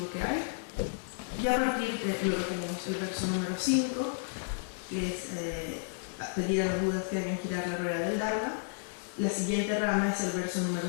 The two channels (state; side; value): silent; right; digital silence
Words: que hay. Y a partir de, luego tenemos el verso número 5, que es pedir a los Budas que hagan girar la rueda del Dharma. La siguiente rama es el verso